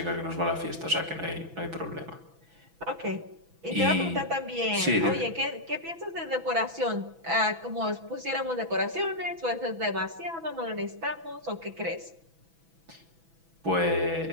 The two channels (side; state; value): left; late; 6.1 ms